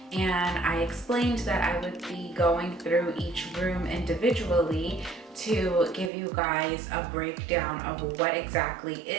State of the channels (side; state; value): left; drops out; at 6.1 s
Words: And I explained that I would be going through each room individually to give you guys a breakdown of what exactly